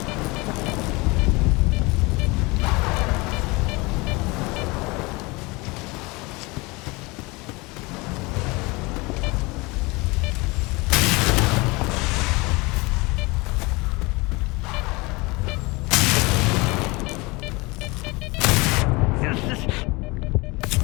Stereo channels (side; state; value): right; quieter; 24.9 dB